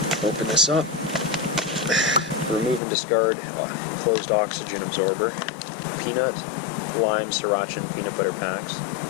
open this up, remove and discard enclosed oxygen absorber, peanut, lime, sriracha, and peanut butter packs,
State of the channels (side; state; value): right; drops out; at 2.8 s